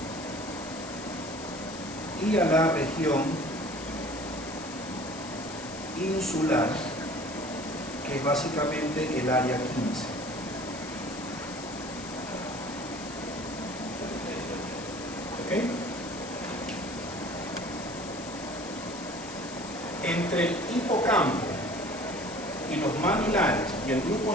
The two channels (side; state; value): left; noise; hiss, 13 dB below the sound